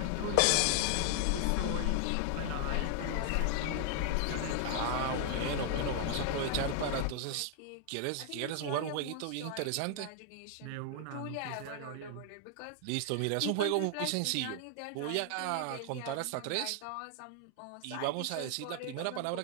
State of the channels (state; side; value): different; both; correlation 0.00